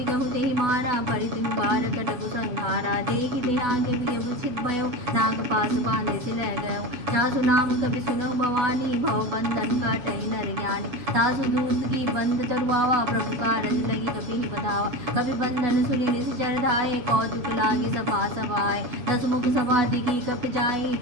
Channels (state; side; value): late; left; 7.9 ms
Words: कहु ते मारा परितु पार कटकु संहारा। देखि ते आगे विषित भयो नाग पास बांधे से लह गयो। तासु नाम कभी सुनो भवानी भव बंधन काटहि नर ज्ञानी। तासु दूत की बंद तरुआवा प्रभु कारज लगी कभी ही बधावा। कभी बंधन सुनि निश्चर धाये कौतुक लागे सभा सभाए। दसमुख सभा दिखी कप जाई